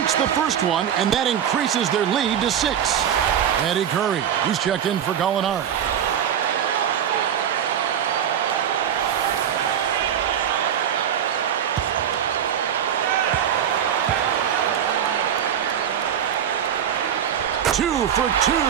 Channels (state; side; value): quieter; left; 9.1 dB